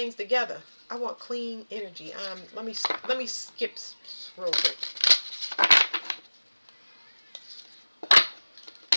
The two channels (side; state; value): both; inverted; correlation -1.00